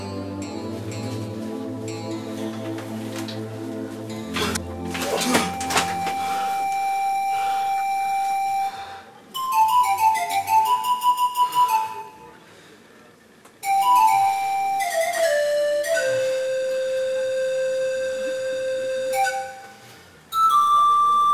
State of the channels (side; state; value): both; identical; correlation 1.00